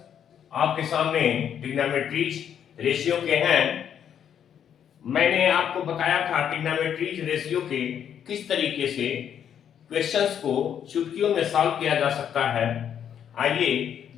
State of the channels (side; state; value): right; quieter; 8.9 dB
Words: आपके सामने ट्रिग्नोमेट्रीज रेशियो के हैं। मैंने आपको बताया था ट्रिग्नोमेट्रीज रेशियो के किस तरीके से क्वेश्चंस को चुटकियों में सॉल्व किया जा सकता है। आइए